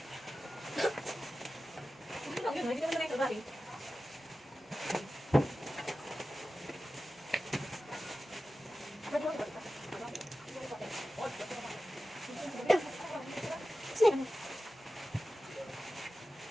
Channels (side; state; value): both; normal; correlation 0.94